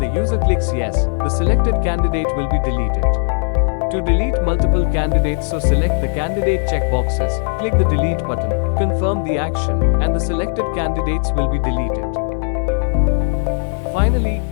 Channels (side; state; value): right; silent; 68 dB below the other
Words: user clicks yes, the selected candidate will be deleted. To delete multiple candidates, so select the candidate checkboxes, click the delete button, confirm the action, and the selected candidates will be deleted. Finally,